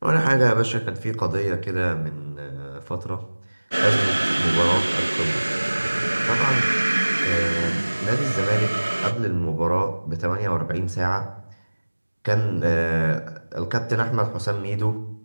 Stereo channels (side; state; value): both; inverted; correlation -1.00